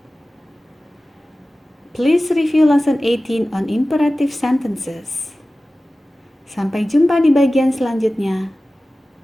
Please review lesson 18 on imperative sentences. Sampai jumpa di bagian selanjutnya.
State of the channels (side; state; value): both; normal; correlation 0.96